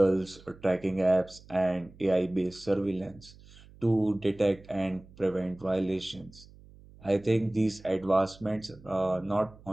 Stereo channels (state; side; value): noise; right; hum, 23 dB below the sound